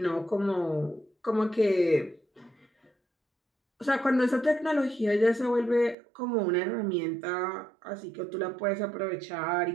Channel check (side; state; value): left; drops out; at 6.0 s